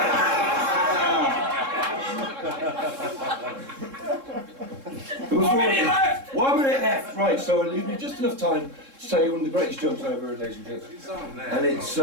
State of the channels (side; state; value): left; late; 3.7 ms